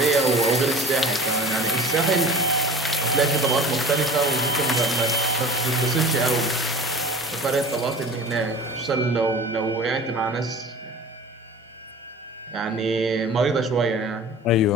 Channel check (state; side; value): normal; both; correlation 0.41